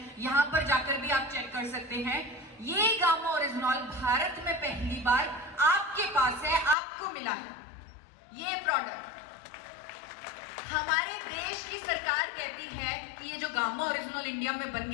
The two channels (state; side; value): drops out; right; at 6.8 s